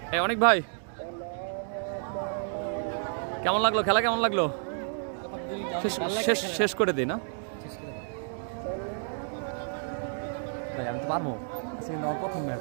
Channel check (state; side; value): silent; left; digital silence